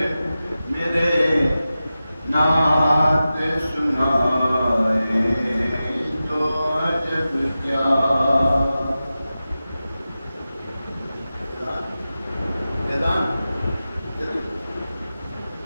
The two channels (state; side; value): inverted; both; correlation -0.94